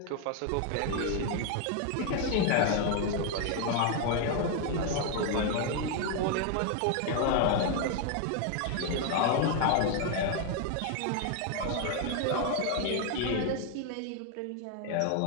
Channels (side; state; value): both; different; correlation 0.01